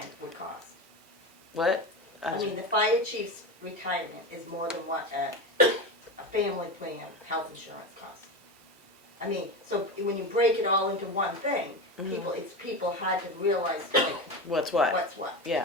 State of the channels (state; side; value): normal; both; correlation 0.22